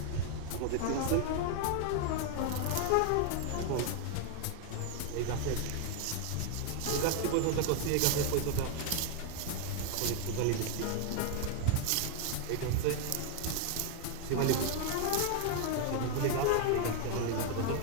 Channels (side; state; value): both; different; correlation 0.00